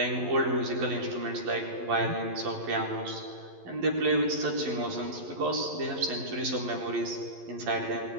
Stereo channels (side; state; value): left; late; 11 ms